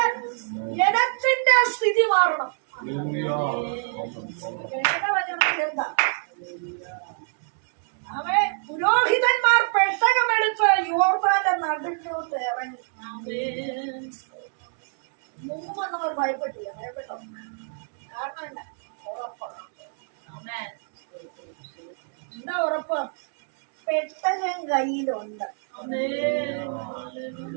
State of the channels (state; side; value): silent; left; 59 dB below the other